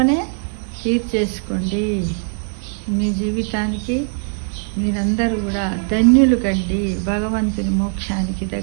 తీర్చేసుకోండి. మీ జీవితానికి మీరందరూ కూడా ధన్యులు కండి. భగవంతుని మోక్షానికి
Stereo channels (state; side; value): silent; left; digital silence